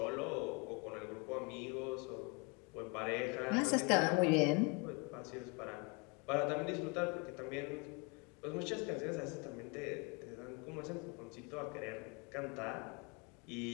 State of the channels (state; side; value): quieter; right; 31.5 dB